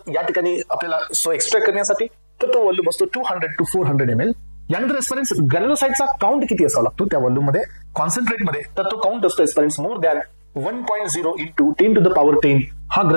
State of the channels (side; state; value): both; inverted; correlation -1.00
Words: या ठिकाणी आपल्याला सो एक्सट्रॅक्ट करण्यासाठी तर तो व्हॉल्यूम असतो 200 to 400 ml. यानंतर एस्पेरेंट्स ग्रॅन्युलोसाइटचा काउंट किती असावा लागतो त्या व्हॉल्यूम मध्ये कॉन्सन्ट्रेट मध्ये तर तो काउंट असतो aspirants more than 1.0 into 10 to the power 10 हा